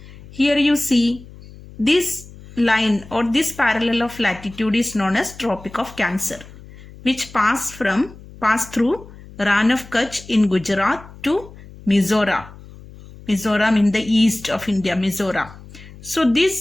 Here you see this line or this parallel of latitude is known as Tropic of Cancer, which pass through Rann of Kutch in Gujarat to Mizoram in the east of India, Mizoram. So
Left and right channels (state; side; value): noise; left; hum, 19 dB below the sound